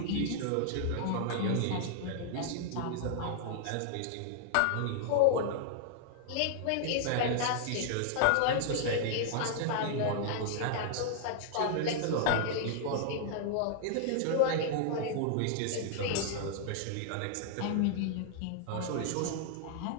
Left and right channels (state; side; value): different; both; correlation -0.01